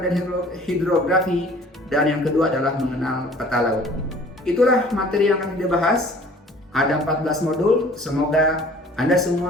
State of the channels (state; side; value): normal; both; correlation 0.50